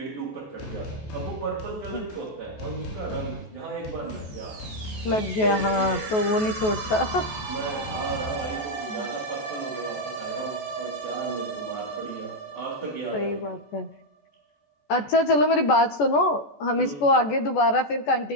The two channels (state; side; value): late; right; 14 ms